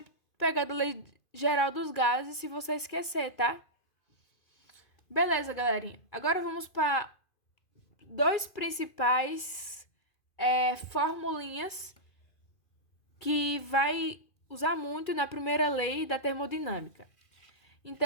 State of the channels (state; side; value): late; right; 2.5 ms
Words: pegar da lei geral dos gases se você esquecer, tá? Beleza, galerinha. Agora vamos para dois principais formulinhas que vai usar muito na primeira lei da termodinâmica.